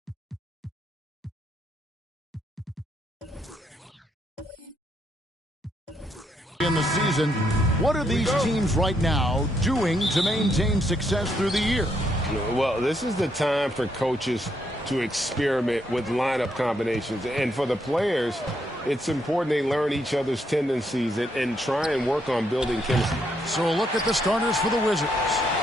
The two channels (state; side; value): normal; both; correlation 0.76